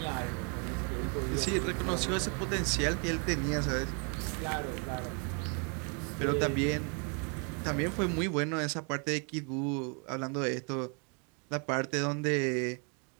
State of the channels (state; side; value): quieter; left; 37.3 dB